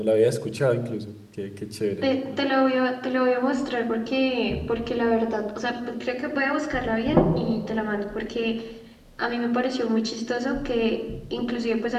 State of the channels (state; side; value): identical; both; correlation 1.00